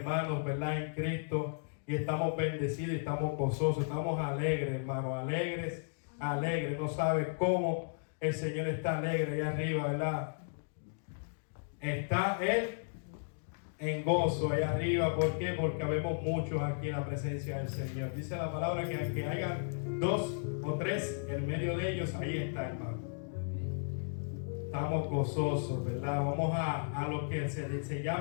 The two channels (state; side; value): silent; right; digital silence